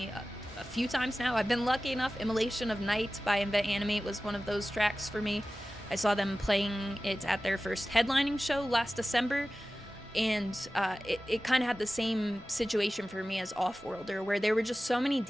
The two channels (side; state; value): both; normal; correlation 0.96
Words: a few times now. I've been lucky enough. Immolation of Night by Invent Animate was one of those tracks for me. I saw them playing it at their first headlining show last December, and it kind of had the same situation for me as Offworlder, where there were just so many